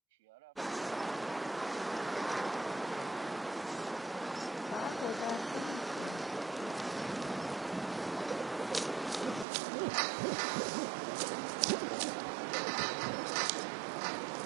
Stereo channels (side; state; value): left; drops out; at 9.5 s